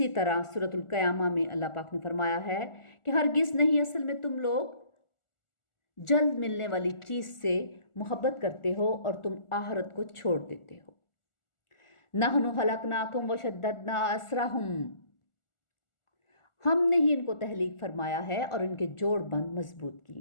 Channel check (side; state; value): right; late; 1.4 ms